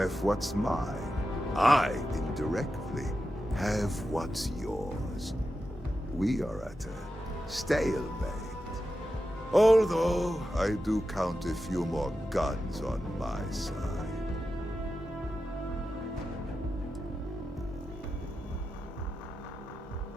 what's mine. I, indirectly, have what's yours. We are at a stalemate. Although, I do count a few more guns on my side.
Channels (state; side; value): normal; both; correlation 0.90